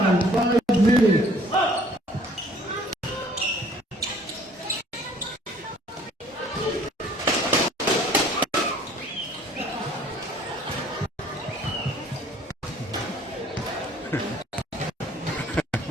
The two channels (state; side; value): normal; both; correlation 0.56